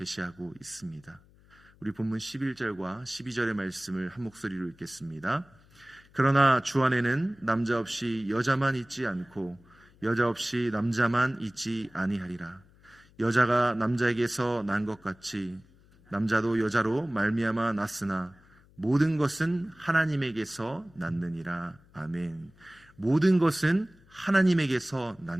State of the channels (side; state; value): left; noise; hum, 28 dB below the sound